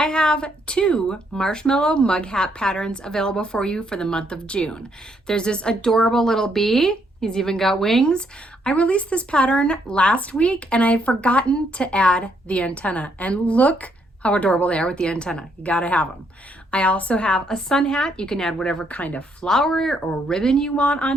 have 2 marshmallow mug hat patterns available for you for the month of June. There's this adorable little bee. He's even got wings. I released this pattern last week and I had forgotten to add the antenna. And look how adorable they are with the antenna. You gotta have them. I also have a sun hat. You can add whatever kind of flower or ribbon you want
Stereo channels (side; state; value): both; normal; correlation 0.73